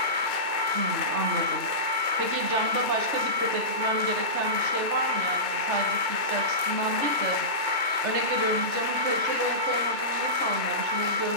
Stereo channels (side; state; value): left; late; 2.3 ms